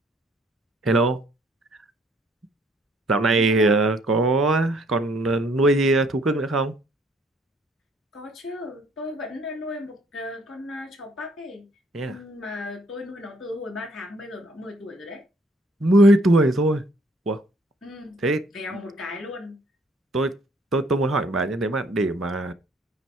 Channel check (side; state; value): both; normal; correlation 0.63